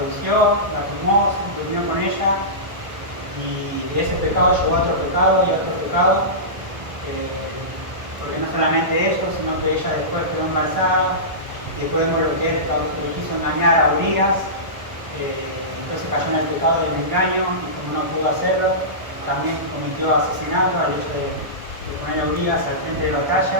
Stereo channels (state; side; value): late; left; 1.2 ms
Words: la tomó, se durmió con ella, y de ese pecado llegó a otro pecado y a otro pecado, porque no solamente eso, sino que ella después quedó embarazada, y después vemos lo que él quiso engañar a Urias, entonces cayó en el pecado del engaño, y como no pudo hacerlo, también cometió asesinato al hecho de poner a Urias al frente de la